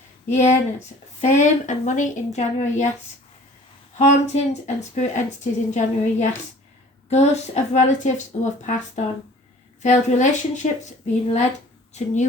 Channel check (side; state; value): both; normal; correlation 0.49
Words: Hyenas, fame and money in January, yes. Hauntings and spirit entities in January, yes. Ghosts of relatives who have passed on. Failed relationships being led to